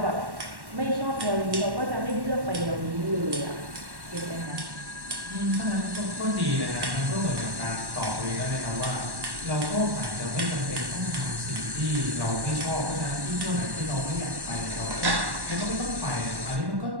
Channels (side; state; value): left; late; 1.1 ms